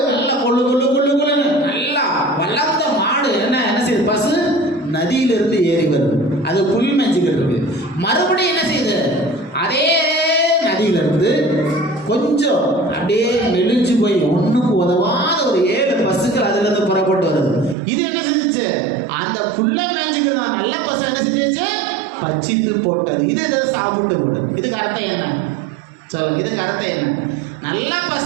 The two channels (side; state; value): left; drops out; at 17.8 s